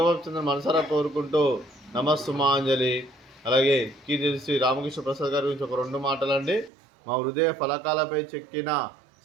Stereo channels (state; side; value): drops out; left; at 6.7 s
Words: మనసారా కోరుకుంటూ నమస్సుమాంజలి. అలాగే కీర్తి చేసి రామకృష్ణ ప్రసాద్ గారి గురించి ఒక 2 మాటలండి. మా హృదయ ఫలకాలపై చెక్కిన